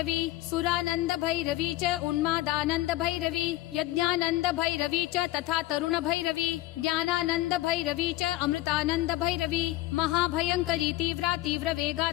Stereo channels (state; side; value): quieter; right; 17.0 dB